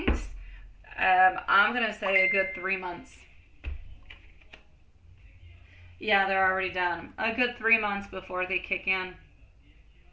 I'm going to say a good 3 months. Yeah, they're already done. A good 3 months before they kick in.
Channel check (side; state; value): both; identical; correlation 1.00